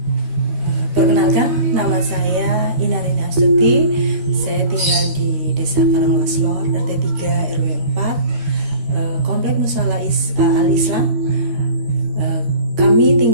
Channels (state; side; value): late; left; 13 ms